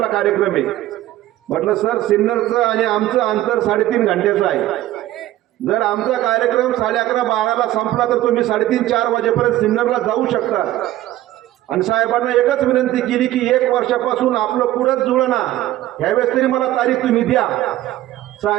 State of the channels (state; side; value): quieter; left; 14.7 dB